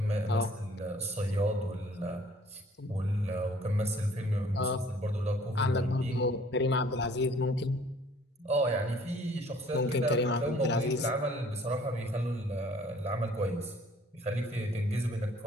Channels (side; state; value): both; normal; correlation 0.56